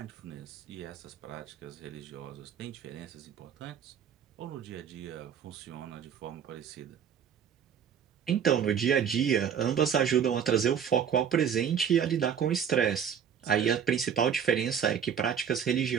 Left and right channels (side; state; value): left; quieter; 8.1 dB